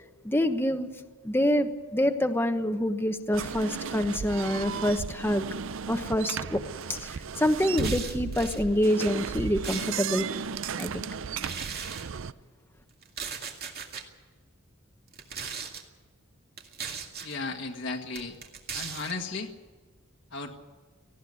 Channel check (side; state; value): both; normal; correlation 0.72